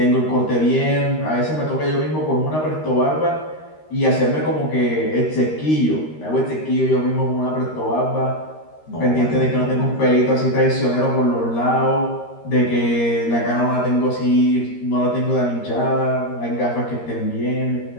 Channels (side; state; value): right; late; 13 ms